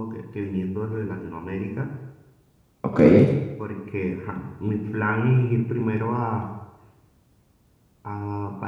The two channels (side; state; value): both; identical; correlation 1.00